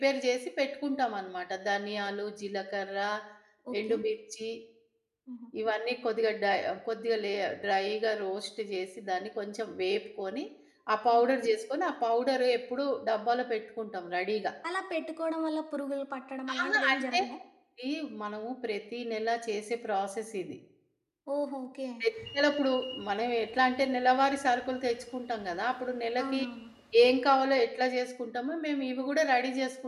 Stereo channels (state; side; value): identical; both; correlation 1.00